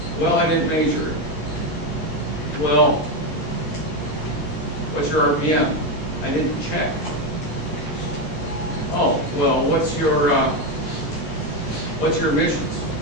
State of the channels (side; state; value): right; late; 13 ms